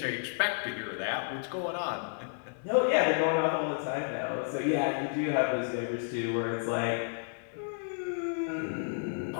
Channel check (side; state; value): right; silent; digital silence